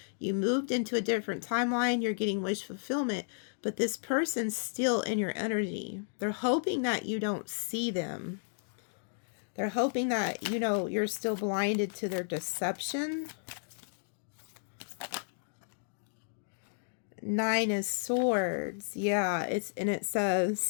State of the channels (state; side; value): silent; right; digital silence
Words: You moved into a different timeline, you're getting wish fulfillment, but this person's still in your energy. They're hoping that you don't see them. They're hoping that, you're still blinded to their deception. 9 of Swords. Yeah, it